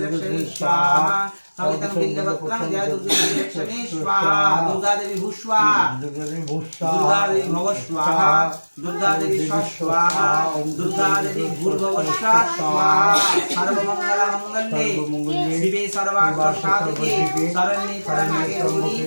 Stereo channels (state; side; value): inverted; both; correlation -1.00